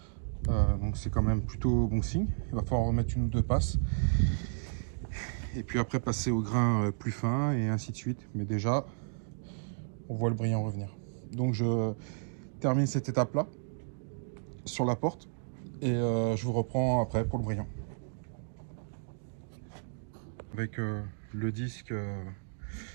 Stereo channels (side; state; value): left; silent; digital silence